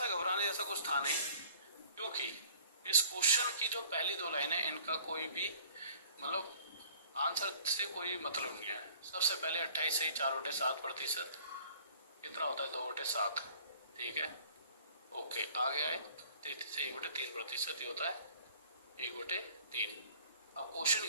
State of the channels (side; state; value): both; inverted; correlation -0.51